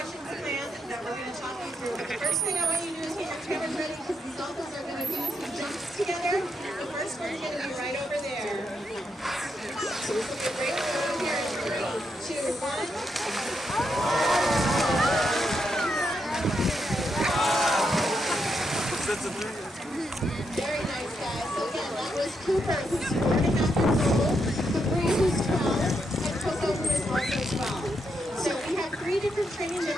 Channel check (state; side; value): normal; both; correlation 0.81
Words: planned that we're going to talk you through. But the first thing I want you to do is get your cameras ready because these Dolphins are going to do some jumps together. The first one's going to be right over there. So this will be a great one here in 3, 2, 1. Very nice, guys. So again, that was Cooper, who's 4.5 years old, Capri, who's 12, and Koko, who is also 12. So we have 3 different training